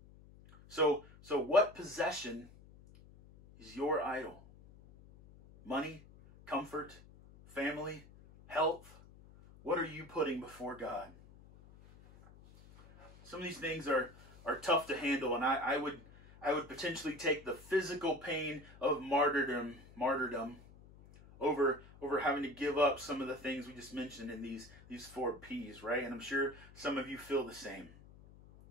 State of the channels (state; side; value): noise; left; hum, 21 dB below the sound